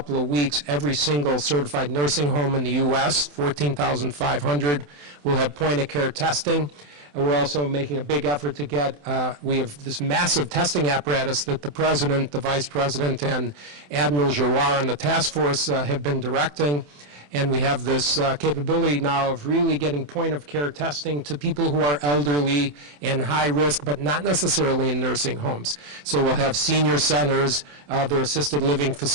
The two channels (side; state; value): left; late; 27 ms